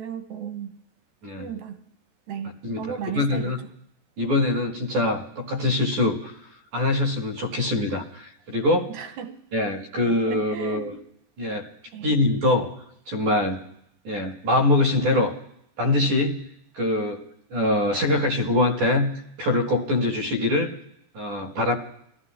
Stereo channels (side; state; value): left; late; 14 ms